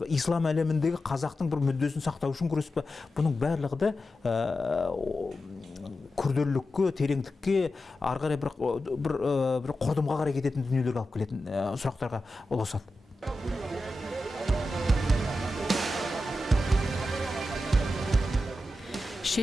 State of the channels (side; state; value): both; normal; correlation 0.91